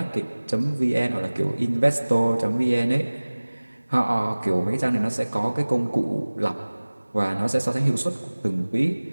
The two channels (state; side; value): inverted; both; correlation -1.00